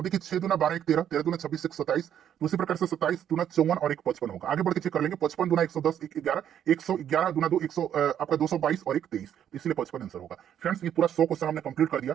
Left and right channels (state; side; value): quieter; left; 9.8 dB